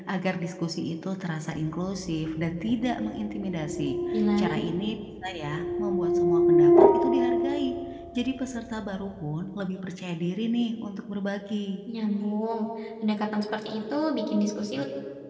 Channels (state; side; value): identical; both; correlation 1.00